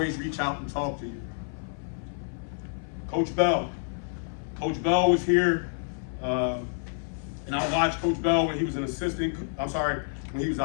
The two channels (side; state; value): right; silent; 56 dB below the other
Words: reach out and talk to you. Coach Bell. Coach Bell was here, and I watched Coach Bell when he was when he was